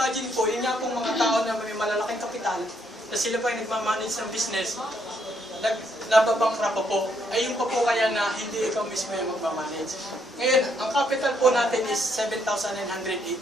po, yun nga pong mga tao na may malalaking kapital, na sila pa yung nagmamanage ng business, nababangkrap pa po, ay yung pa po kaya na hindi ikaw mismo yung magmamanage. Ngayon, ang capital po natin is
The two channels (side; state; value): both; normal; correlation 0.73